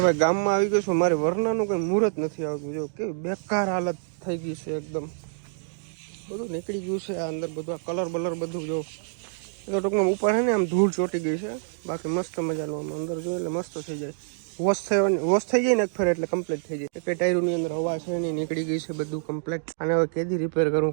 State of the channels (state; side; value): silent; left; digital silence